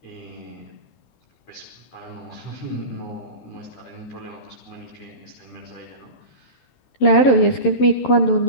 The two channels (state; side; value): late; right; 11 ms